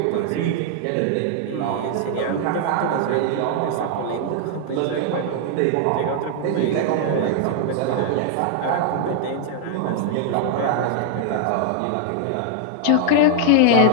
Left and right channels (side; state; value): both; different; correlation 0.00